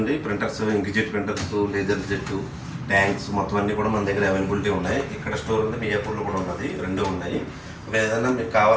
printers, inkjet printers, laser jet, tanks మొత్తం అన్నీ కూడా మన దగ్గర అవైలబిలిటీ ఉన్నాయి. ఇక్కడ స్టోర్ ఉంది, మియాపూర్లో కూడా ఉన్నది, రెండు ఉన్నాయి. ఏదైనా మీకు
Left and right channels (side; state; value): both; identical; correlation 1.00